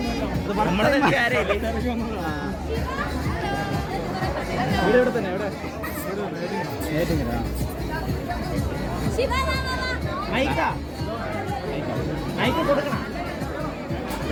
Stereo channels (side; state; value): both; identical; correlation 1.00